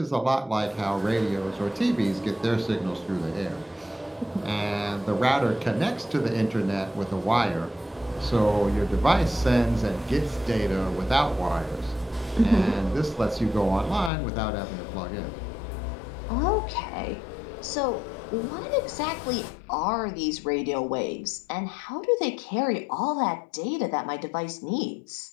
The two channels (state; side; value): drops out; right; at 14.1 s